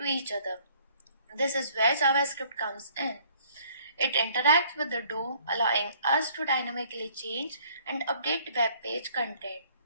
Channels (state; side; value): inverted; both; correlation -0.60